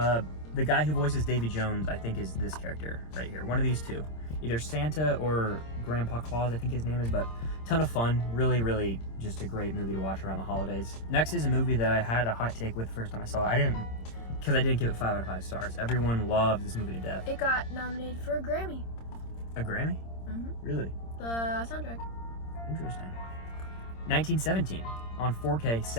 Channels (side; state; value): right; late; 26 ms